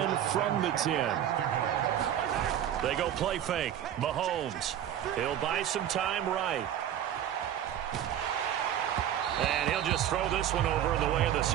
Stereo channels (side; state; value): left; quieter; 10.6 dB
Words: from the 10. They go play fake. Mahomes. He'll buy some time right. And he'll just throw this one over in the way of the